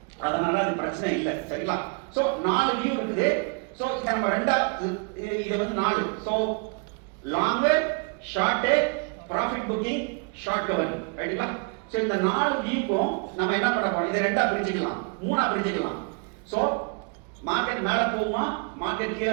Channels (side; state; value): left; quieter; 34.9 dB